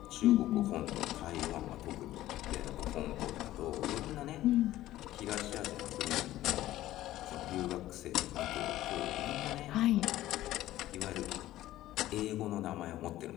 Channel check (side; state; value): right; quieter; 14.8 dB